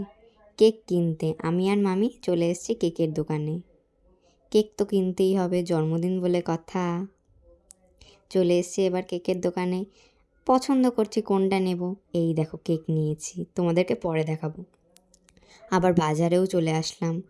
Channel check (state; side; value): identical; both; correlation 1.00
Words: কেক কিনতে আমি আর মামি চলে এসেছি কেকের দোকানে। কেক তো কিনতেই হবে, জন্মদিন বলে কথা। চলে এসেছি এবার কেকের দোকানে। পছন্দ করছি কোনটা নেব। এই দেখো কেক নিয়েছি, তোমাদেরকে পরে দেখাবো। আবার বাজারেও চলে আসলাম,